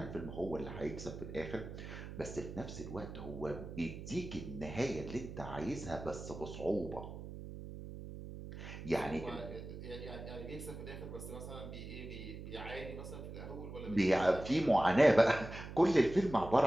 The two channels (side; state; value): right; noise; hum, 10 dB below the sound